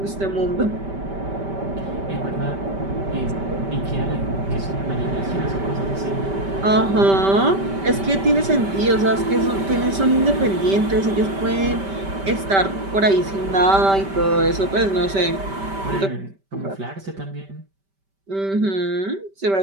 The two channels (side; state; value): left; late; 5.1 ms